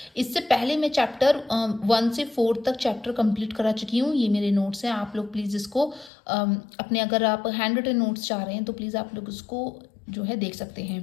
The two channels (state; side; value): drops out; right; at 6.1 s